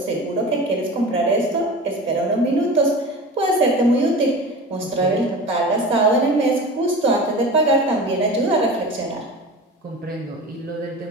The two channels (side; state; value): both; normal; correlation 0.33